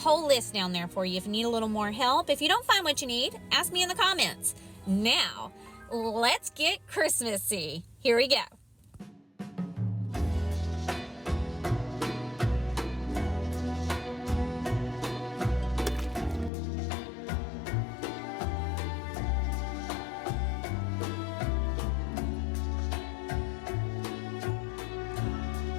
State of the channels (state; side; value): drops out; right; at 16.5 s